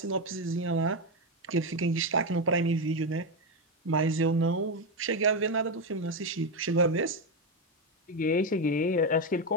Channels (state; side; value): normal; both; correlation 0.09